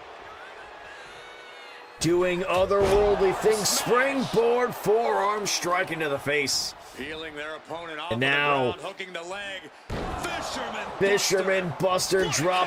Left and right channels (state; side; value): identical; both; correlation 1.00